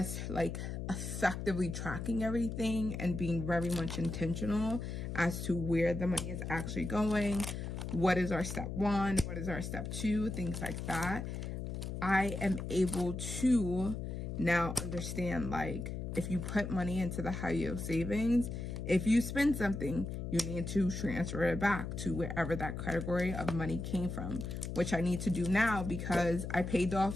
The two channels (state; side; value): noise; left; hum, 5 dB below the sound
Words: like, effectively tracking everything and being very much intentional as to where the money is actually going, what is our step 1, what is our step 2, things like that, I am able to now understand, like, if you put money into the high yield savings, if you spend something, you need to transfer it back to wherever that category of money came from, which I need to do now because I paid